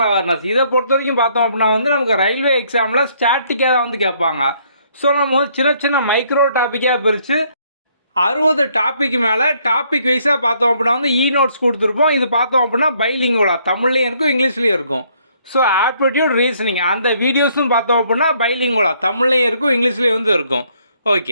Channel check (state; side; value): inverted; both; correlation -0.67